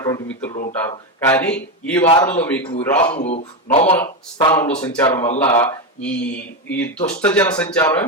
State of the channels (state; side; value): normal; both; correlation 0.11